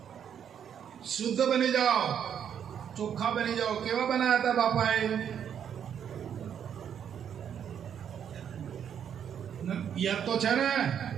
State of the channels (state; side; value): quieter; left; 8.6 dB